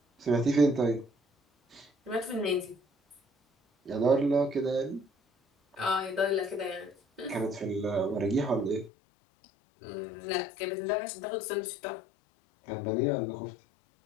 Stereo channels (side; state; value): right; drops out; at 8.9 s